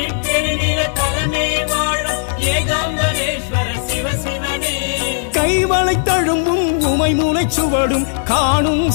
பெருநில தலமே வாழும் ஏகாம்பரேஸ்வர சிவசிவனே கைவளை தழும்பும் உமை மூளைச் சுவடும் காணும்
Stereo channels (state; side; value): silent; right; digital silence